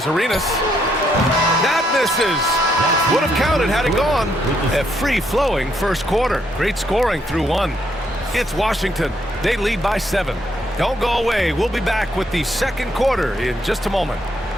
Arenas. That misses. Would have counted had it gone. A free-flowing first quarter. Great scoring through 1. It's Washington. They lead by 7. Don't go away. We'll be back with the second quarter in just a moment.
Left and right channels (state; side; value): normal; both; correlation 0.73